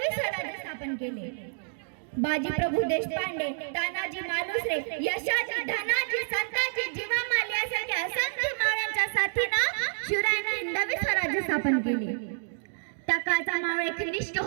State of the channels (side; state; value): left; silent; digital silence